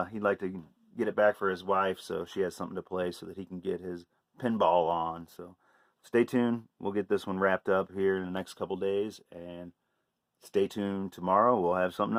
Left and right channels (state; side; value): identical; both; correlation 1.00